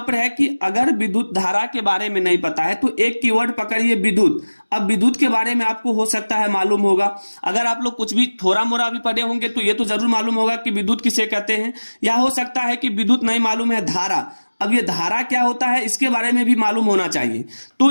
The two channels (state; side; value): inverted; both; correlation -1.00